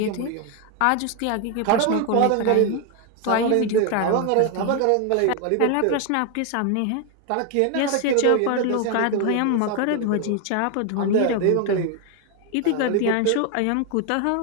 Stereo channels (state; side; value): different; both; correlation 0.01